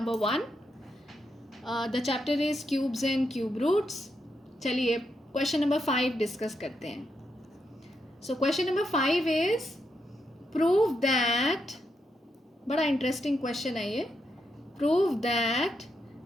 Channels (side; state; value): both; normal; correlation 0.82